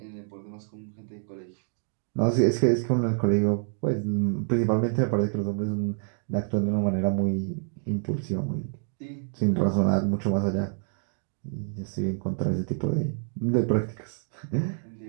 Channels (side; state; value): left; silent; 60 dB below the other